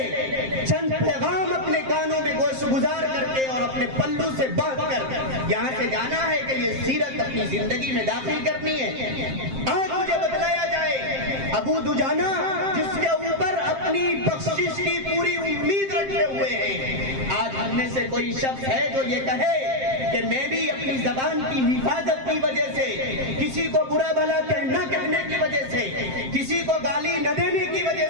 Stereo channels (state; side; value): late; left; 7.6 ms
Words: چند پیغام اپنے کانوں میں گوش گزار کر کے اور اپنے پلو سے باندھ کر یہاں سے جانا ہے کہ یہ سیرت اپنی زندگی میں داخل کرنی ہے۔ آج مجھے بتلایا جائے ابو دجانہ جس کے اوپر اپنی بخشش کی پوری امید رکھے ہوئے ہیں، آج ہم میں سے کوئی شخص ہے جو یہ کہے کہ میں بھی اپنی زبان کی حفاظت کی وجہ سے، کسی کو برا بھلا نہ کہنے کی وجہ سے، کسی کو گالی نہ دینے کی وجہ